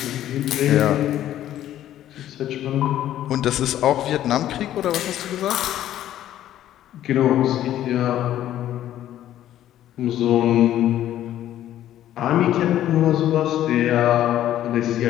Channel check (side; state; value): right; quieter; 12.3 dB